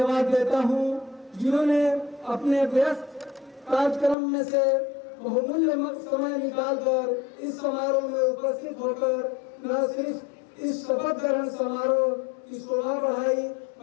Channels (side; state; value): right; drops out; at 4.2 s